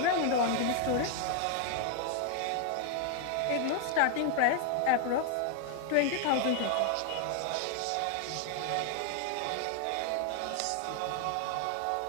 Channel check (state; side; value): different; both; correlation 0.00